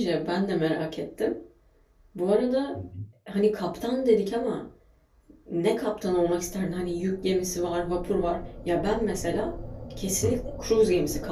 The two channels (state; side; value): identical; both; correlation 1.00